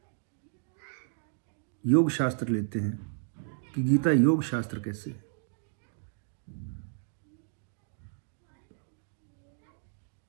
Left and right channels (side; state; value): left; silent; digital silence